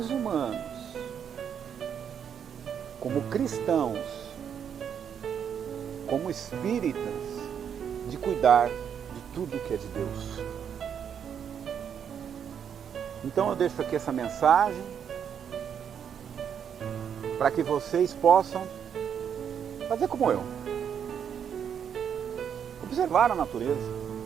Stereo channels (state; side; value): quieter; left; 8.1 dB